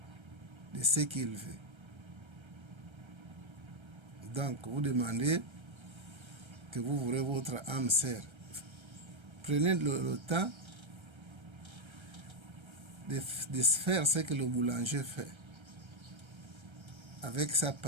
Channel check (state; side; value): late; left; 1.3 ms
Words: de ce qu'il veut. Donc vous demandez que vous voulez votre âme sœur. Prenez le temps de faire ce que le boulanger fait avec sa